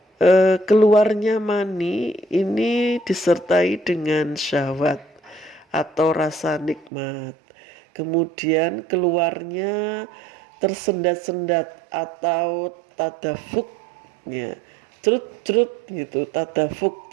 keluarnya mani ini disertai dengan syahwat atau rasa nikmat. Kemudian keluarnya tersendat-sendat atau tadafuk, ya, cerut-cerut gitu, tadafuk,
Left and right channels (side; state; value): left; drops out; at 6.9 s